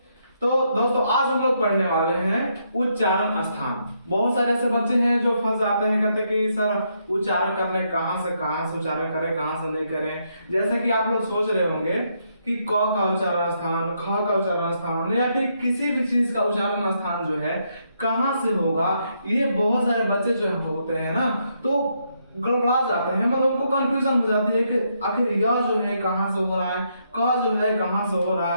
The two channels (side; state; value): both; inverted; correlation -0.77